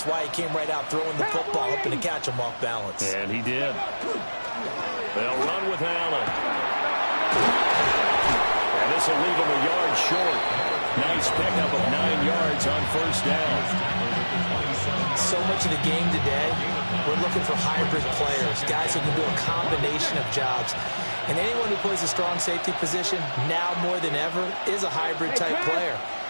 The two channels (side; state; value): both; inverted; correlation -1.00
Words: why he came right out throwing the football, hoping to catch him off balance. And he did. They'll run with Allen. And this will leave him a yard short. Nice pickup of 9 yards on first down. So much of the game today, we're looking for hybrid players, guys who can do a combination of jobs. And anyone who plays a strong safety position, now more than ever, is a hybrid-type player.